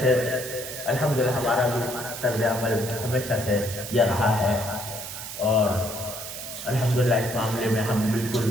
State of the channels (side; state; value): right; noise; hiss, 9 dB below the sound